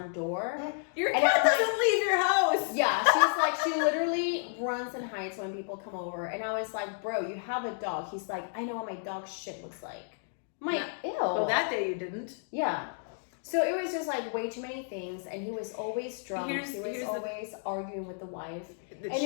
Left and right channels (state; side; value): silent; right; digital silence